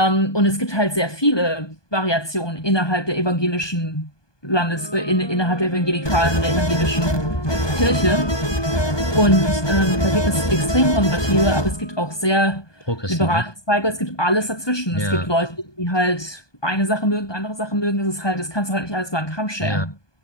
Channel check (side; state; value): right; late; 1.2 ms